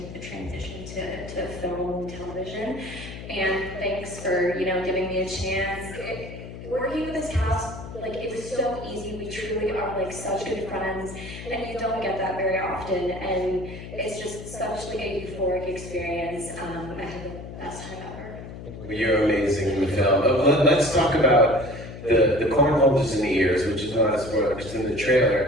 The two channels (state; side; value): noise; left; hum, 11 dB below the sound